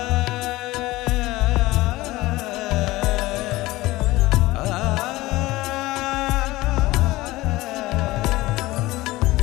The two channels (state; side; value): quieter; right; 18.9 dB